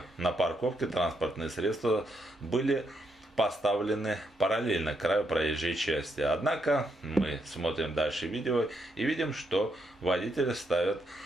на парковке транспортные средства были поставлены параллельно краю проезжей части. Однако мы смотрим дальше видео и видим, что водители ставят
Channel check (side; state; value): both; normal; correlation 0.78